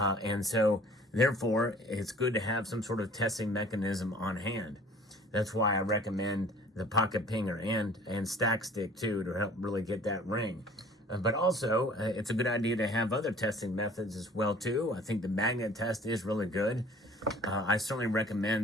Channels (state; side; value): normal; both; correlation 0.50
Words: so, therefore, it's good to have some sort of testing mechanism on hand. That's why I recommend the pocket pinger and stack stick, too, to help really get that ring. But also, it's a good idea to have other testing methods as well, too. I think the magnet test is really good. I certainly